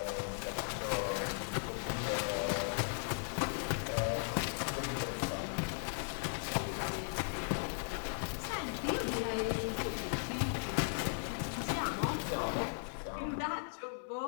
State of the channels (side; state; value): right; silent; digital silence